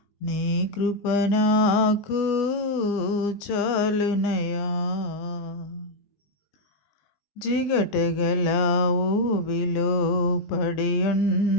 నీ కృప నాకు చాలునయ్యా. జిగటగల ఊబిలో పడి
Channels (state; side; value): late; right; 20 ms